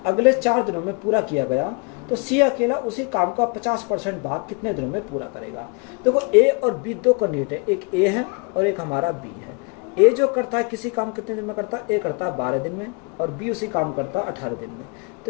अगले 4 दिनों में पूरा किया गया। तो सी अकेला उसी काम का 50% भाग कितने दिनों में पूरा करेगा। देखो ए और बी दो कैंडिडेट है, एक ए है और एक हमारा बी है। ए जो करता है किसी काम कितने दिन में करता है, ए करता है 12 दिन में और बी उसी काम करता है 18 दिन में। तो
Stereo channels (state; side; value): quieter; right; 32.9 dB